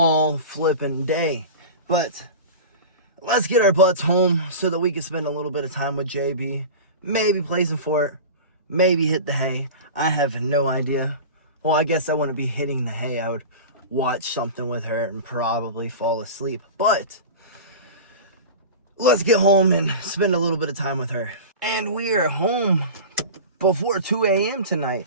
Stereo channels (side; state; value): both; inverted; correlation -0.31